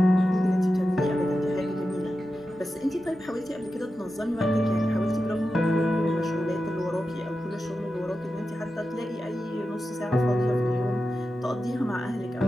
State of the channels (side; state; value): both; normal; correlation 0.91